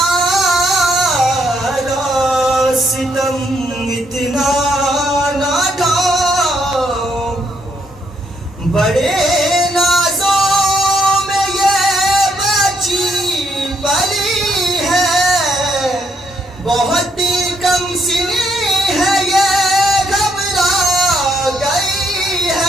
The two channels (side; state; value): both; normal; correlation 0.73